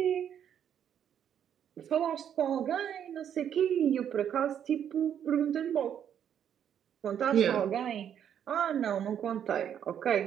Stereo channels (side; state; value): left; quieter; 9.2 dB